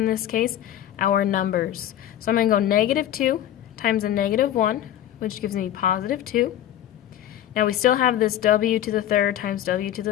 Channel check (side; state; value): right; quieter; 11.7 dB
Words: this case our numbers. So I'm going to go negative 2 times a negative 1, which gives me positive 2. Now we still have this w to the 3rd times w to